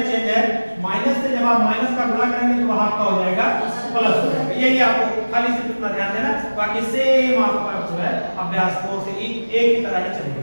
चेंज है, माइनस से जब आप माइनस का गुणा करेंगे तो वहां आपका हो जाएगा प्लस हो जाएगा। यही आपको खाली से कितना ध्यान देना, बाकी सेम आपका जो है अभ्यास कोर्स एक ही तरह ही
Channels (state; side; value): inverted; both; correlation -1.00